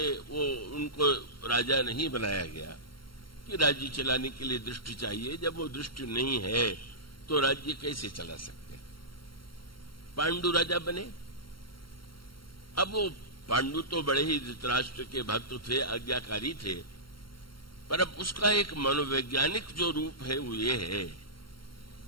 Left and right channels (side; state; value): right; late; 0.73 ms